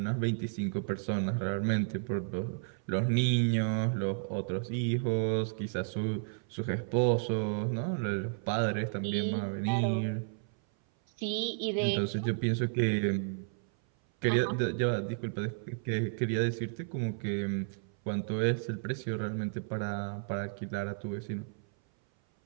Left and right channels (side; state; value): left; silent; 56 dB below the other